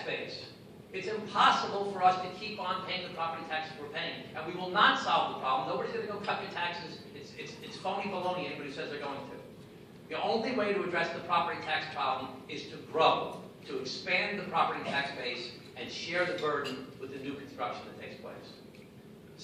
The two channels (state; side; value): identical; both; correlation 1.00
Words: base. It's impossible for us to keep on paying the property taxes we're paying, and we will not solve the problem. Nobody's going to go cut your taxes. It's phony baloney, anybody who says they're going to. The only way to address the property tax problem is to grow, to expand the property tax base and share the burden with the new construction that takes place.